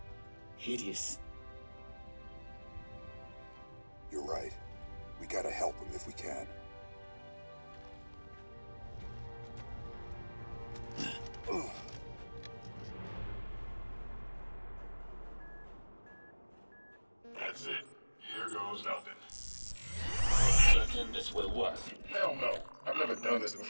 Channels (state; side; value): inverted; both; correlation -1.00